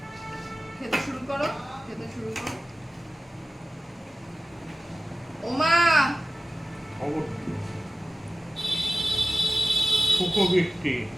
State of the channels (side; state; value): both; normal; correlation 0.96